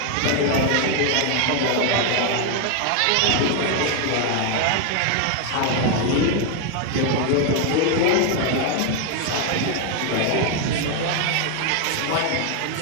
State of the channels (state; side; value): different; both; correlation 0.01